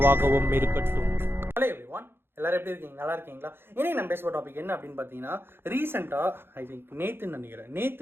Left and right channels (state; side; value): late; left; 0.11 ms